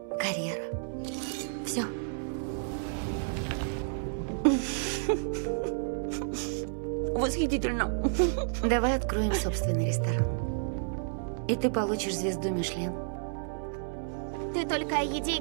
карьера. Все. Восхитительно. Давай откроем собственный ресторан. И ты получишь звезду Мишлен. Ты только о еде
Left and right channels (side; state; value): left; silent; 57 dB below the other